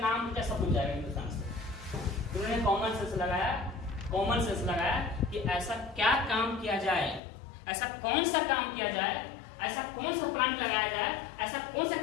क्या सब भूल जाएगा हिंदुस्तान से। उन्होंने कॉमन सेंस लगाया कि ऐसा क्या काम किया जाए, ऐसा कौन सा काम किया जाए, ऐसा कौन सा प्लांट लगाया जाए, ऐसा कौन सा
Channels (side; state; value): right; drops out; at 7.2 s